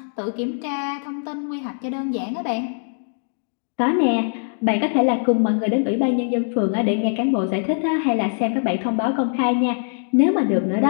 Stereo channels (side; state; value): right; silent; digital silence